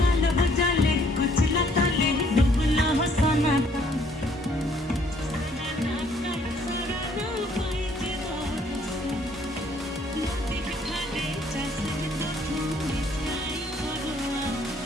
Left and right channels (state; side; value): normal; both; correlation 0.63